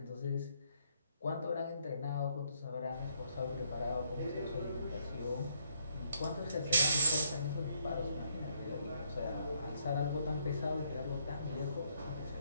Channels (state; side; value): inverted; both; correlation -0.72